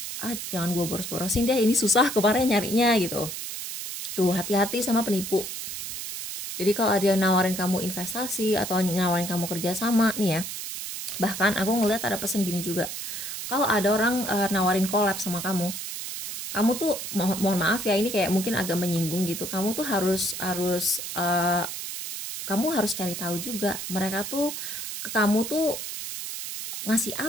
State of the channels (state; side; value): noise; right; hiss, 6 dB below the sound